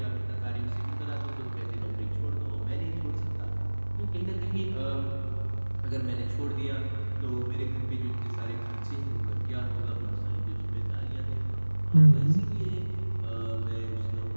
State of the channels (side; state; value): both; inverted; correlation -1.00